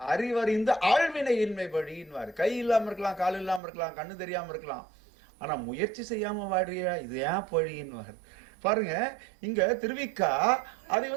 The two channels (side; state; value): left; drops out; at 3.6 s